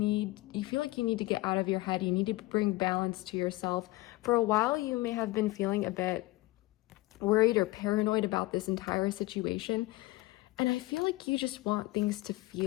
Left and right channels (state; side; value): quieter; right; 20.4 dB